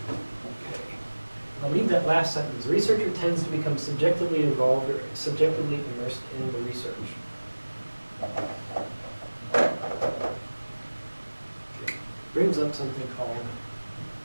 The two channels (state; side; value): inverted; both; correlation -1.00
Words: Okay. I'll leave that last sentence. Researcher tends to become subjectively involved or subjectively immersed in the research. Okay. Brings up something called